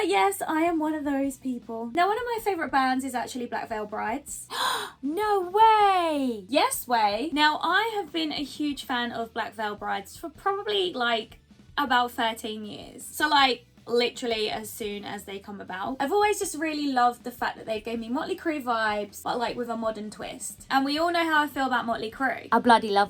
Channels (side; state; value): both; identical; correlation 1.00